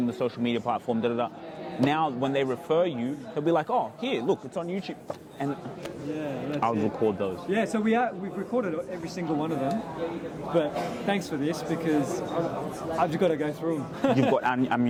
the social media platform. Now when they refer you, they'll be like, oh, here, look, it's on YouTube, and I'll record those. Yeah, so we've recorded every single one of them, but thanks for this because I've just got to go through them. You've got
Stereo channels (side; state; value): both; identical; correlation 1.00